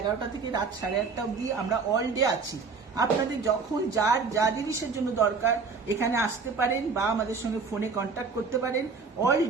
থেকে রাত 8:30 অবধি আমরা অল ডে আছি। আপনাদের যখন যার যা জিনিসের জন্য দরকার এখানে আসতে পারেন বা আমাদের সঙ্গে ফোনে কন্ট্যাক্ট করতে পারেন। অল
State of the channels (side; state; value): left; quieter; 4.9 dB